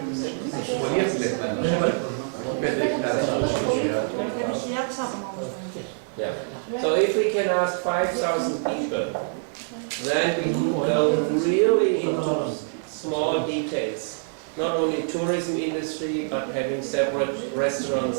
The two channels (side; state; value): left; silent; digital silence